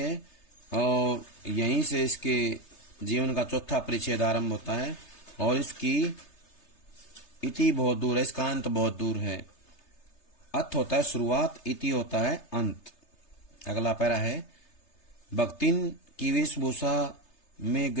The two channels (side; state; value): right; late; 3.3 ms